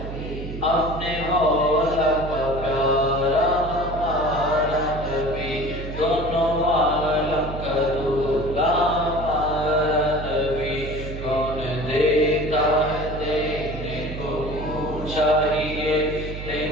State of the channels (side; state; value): right; noise; hum, 8 dB below the sound